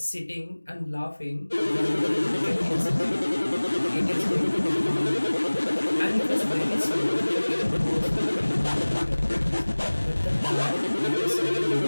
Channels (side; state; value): both; inverted; correlation -1.00